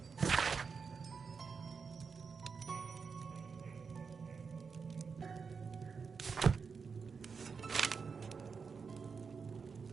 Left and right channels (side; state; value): left; quieter; 5.5 dB